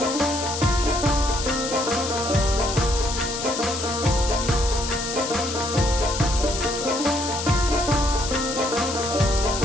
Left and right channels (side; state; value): left; noise; hiss, 5 dB below the sound